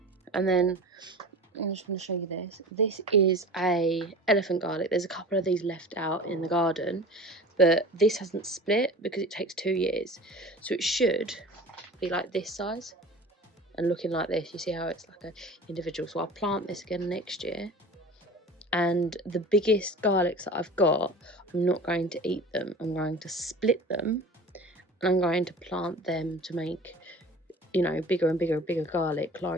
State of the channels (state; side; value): normal; both; correlation 0.38